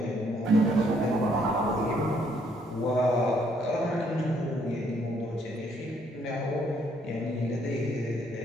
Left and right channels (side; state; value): both; normal; correlation 0.68